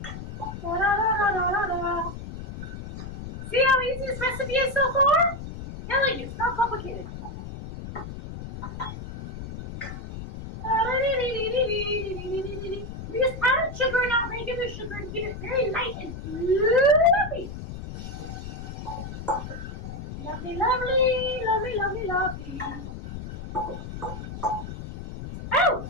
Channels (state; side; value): noise; left; rumble, 9 dB below the sound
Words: Da, da, da, da, da, da. See how easy this recipe is so far? Telling you, it's not complicated. We just added sugar, not regular sugar, to keep it very light and fluffy. Lovely, lovely, lovely, lovely, lovely. Oh,